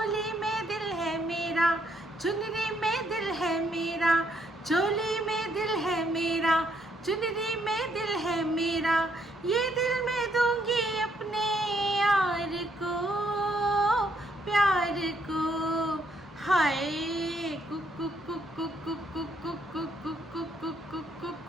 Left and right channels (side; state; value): both; normal; correlation 0.72